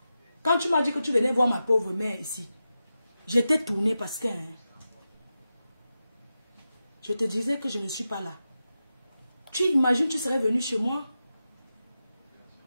Quand tu m'as dit que tu venais voir ma pauvre mère ici, j'étais tournée parce que... Hein, je te disais que je ne suis pas là. Tu imagines, tu serais venu chez moi.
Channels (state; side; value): inverted; both; correlation -0.91